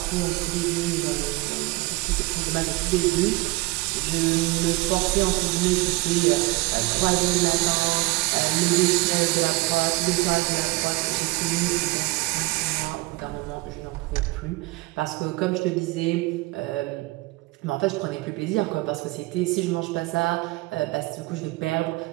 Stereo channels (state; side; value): quieter; left; 22.5 dB